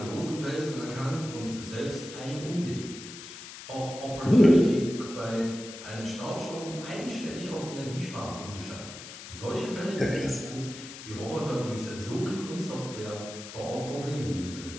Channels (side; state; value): left; noise; hiss, 13 dB below the sound